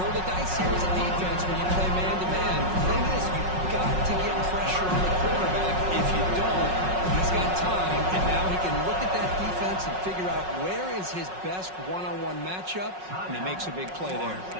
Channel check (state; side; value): late; left; 5.4 ms